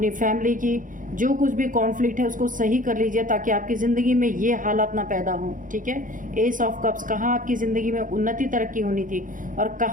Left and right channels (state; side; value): late; left; 0.39 ms